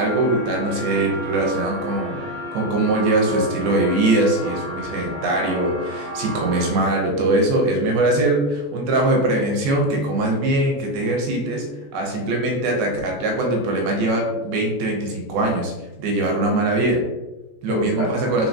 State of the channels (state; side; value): late; left; 14 ms